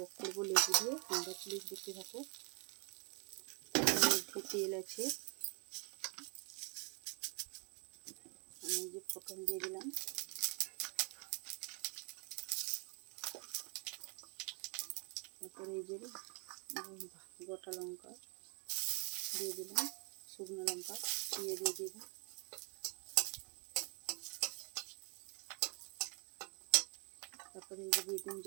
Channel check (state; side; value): quieter; left; 35.6 dB